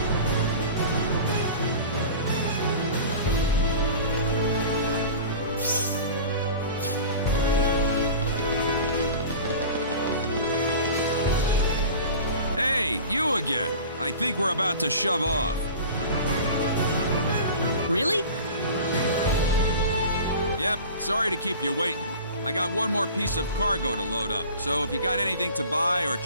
Hey, you again. I think we're about to shove off. Really? Yep, sorry to keep you waiting. I got one more piece of cargo to load up, so if you got anything to buy or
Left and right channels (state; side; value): inverted; both; correlation -0.38